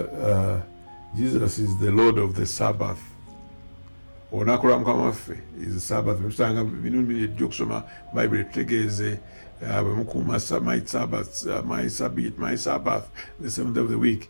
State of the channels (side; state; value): both; inverted; correlation -1.00